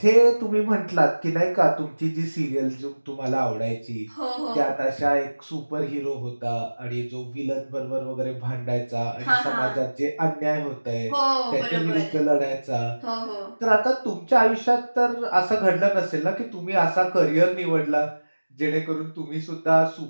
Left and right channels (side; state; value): both; inverted; correlation -1.00